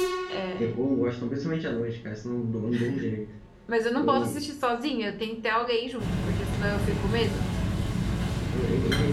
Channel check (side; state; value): both; identical; correlation 1.00